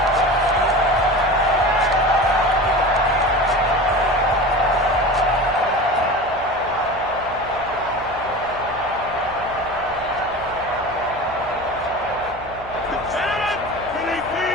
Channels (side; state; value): right; noise; hum, 17 dB below the sound